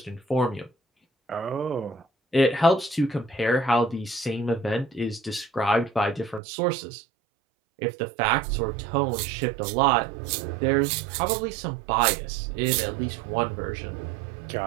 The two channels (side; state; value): left; drops out; at 6.4 s